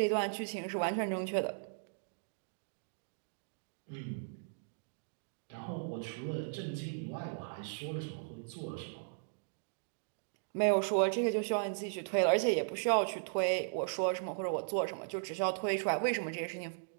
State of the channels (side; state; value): left; silent; digital silence